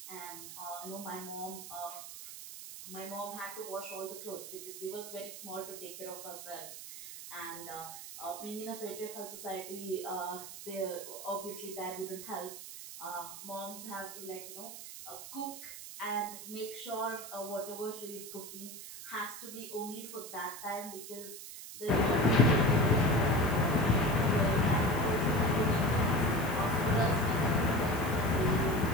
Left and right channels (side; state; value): right; noise; hiss, 11 dB below the sound